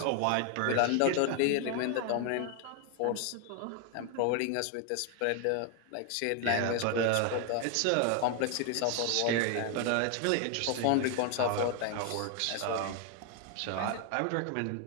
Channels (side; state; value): both; different; correlation 0.01